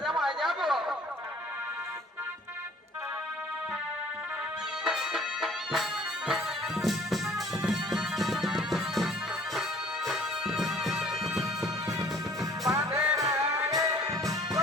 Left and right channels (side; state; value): both; normal; correlation 0.53